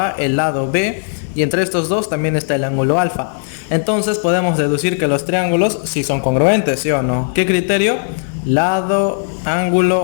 el lado B, y entre estos dos también está el ángulo alfa. Entonces podemos deducir que los triángulos sí son congruentes, ¿sí o no? ¿Qué criterio? Lado,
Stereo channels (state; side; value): silent; right; digital silence